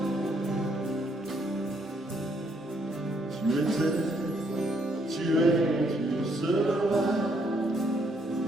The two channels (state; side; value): normal; both; correlation 0.71